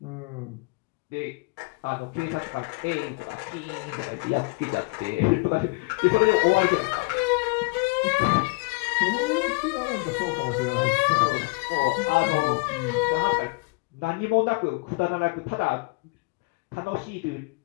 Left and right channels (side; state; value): right; quieter; 28.8 dB